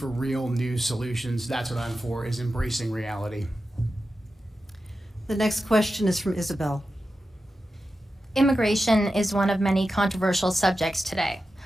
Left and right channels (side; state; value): both; normal; correlation 0.91